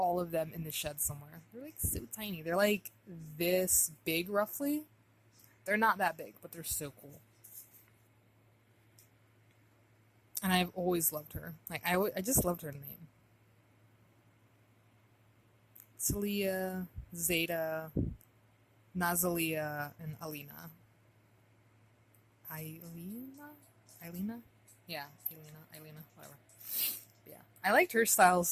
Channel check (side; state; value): both; identical; correlation 1.00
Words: of them in the shed somewhere. They're like so tiny. They're like this big, roughly. They're not that big, but they're so cool. And I've always loved her. Like, I just loved her name. Talia, Zeta, Nazalia, and Alina. Alina? Yeah, Elena, whatever. But yeah, I liked her style